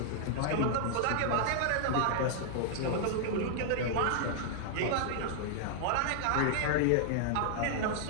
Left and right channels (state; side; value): different; both; correlation -0.01